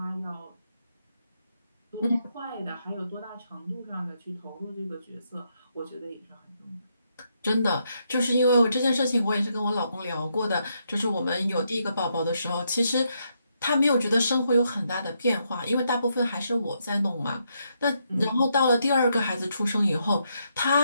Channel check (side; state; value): both; inverted; correlation -0.78